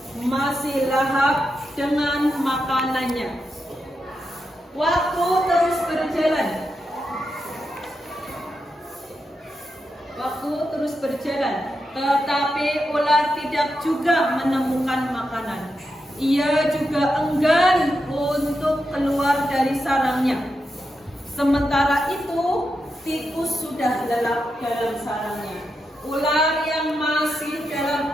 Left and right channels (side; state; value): both; normal; correlation 0.86